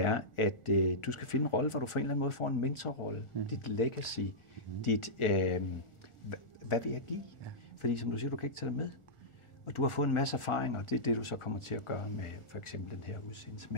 at du skal finde en rolle, hvor du på en eller anden måde får en mentorrolle, dit legacy, dit, hvad vil jeg give? Ja. Fordi som du siger, du kan ikke tage det med. Og du har fået en masse erfaring, og det er det, du så kommer til at gøre med for eksempel den her udsendelse.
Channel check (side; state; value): right; late; 1.4 ms